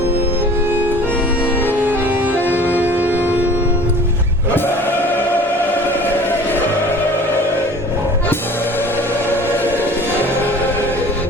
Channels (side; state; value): both; normal; correlation 0.46